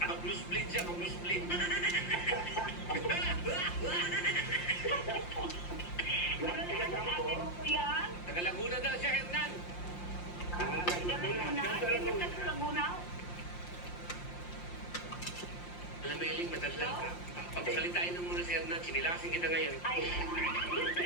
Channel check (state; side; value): late; right; 5.7 ms